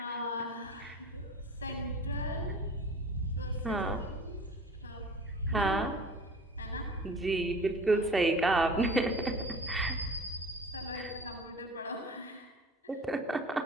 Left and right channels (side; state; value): both; normal; correlation 0.40